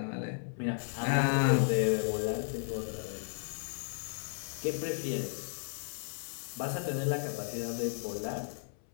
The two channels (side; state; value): right; silent; 55 dB below the other